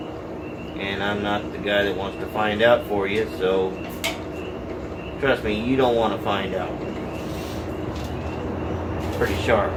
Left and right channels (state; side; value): identical; both; correlation 1.00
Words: And I'm not the guy that wants to find out for you, so trust me, you don't want to find out. It's pretty sharp.